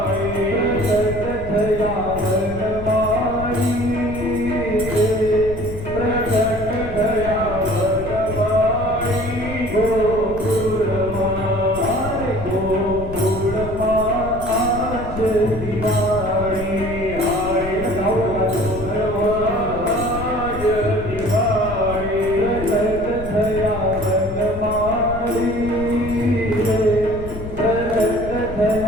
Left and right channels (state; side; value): noise; left; rumble, 10 dB below the sound